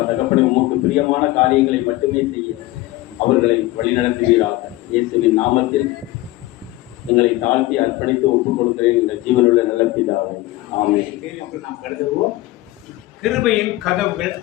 தகப்பனை, உமக்கு பிரியமான காரியங்களை மட்டுமே செய்ய அவர்களை வழிநடத்துவீராக. இயேசுவின் நாமத்தில் எங்களை தாழ்த்தி அர்ப்பணித்து ஒப்புக் கொடுக்கிறேன் எங்கள் ஜீவனுள்ள நல்ல பிதாவே. ஆமென். நாம் கருதுவோம், கிருபையின் கதவுகள்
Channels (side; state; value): right; quieter; 18.1 dB